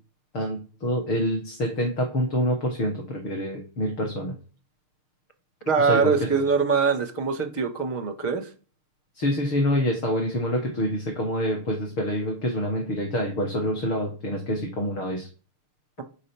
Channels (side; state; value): right; late; 6.4 ms